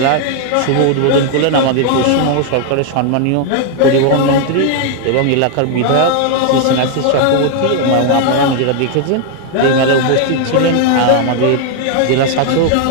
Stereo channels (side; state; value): both; different; correlation 0.00